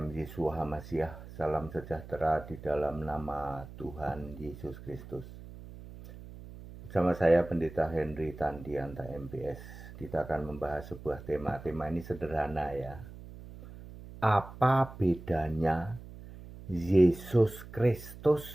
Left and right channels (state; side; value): noise; right; hum, 15 dB below the sound